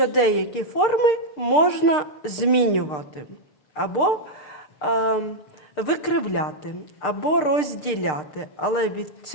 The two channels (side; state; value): right; late; 6.6 ms